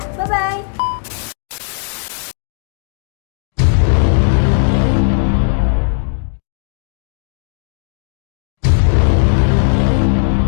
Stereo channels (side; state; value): right; silent; digital silence